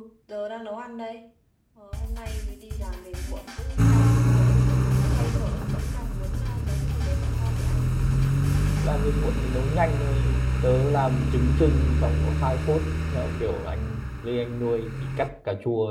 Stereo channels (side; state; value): both; identical; correlation 1.00